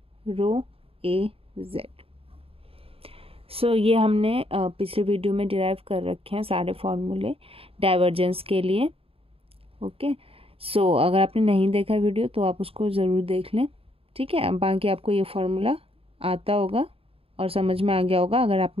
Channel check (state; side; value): late; left; 0.27 ms